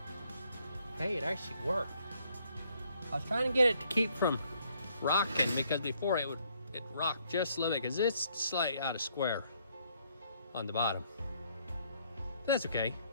Hey, it actually worked. I was trying to get it to keep from rocking because before it rocked just a little bit because it's slightly out of square on the bottom. That's okay.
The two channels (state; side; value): inverted; both; correlation -0.68